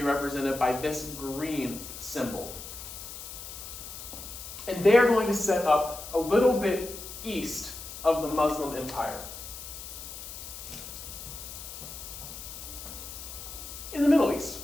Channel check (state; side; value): noise; left; hiss, 11 dB below the sound